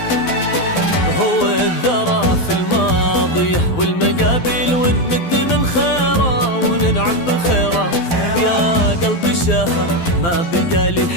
هو الذرى في الماضية والمقابل ونمد من خيره وننعم بخيره، يا قلبي شاهة ما بقى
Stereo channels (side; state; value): right; late; 12 ms